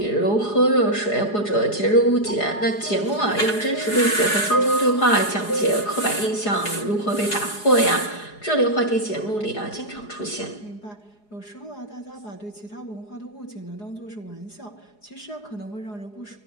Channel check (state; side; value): late; right; 4.8 ms